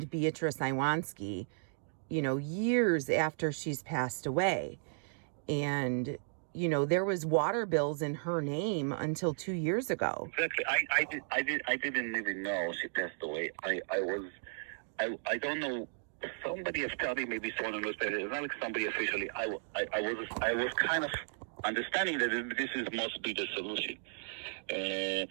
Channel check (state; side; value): silent; left; digital silence